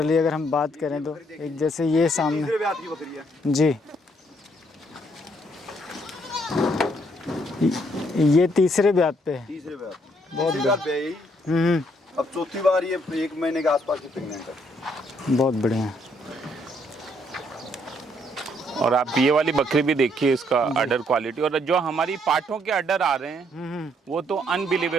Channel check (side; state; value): both; normal; correlation 0.70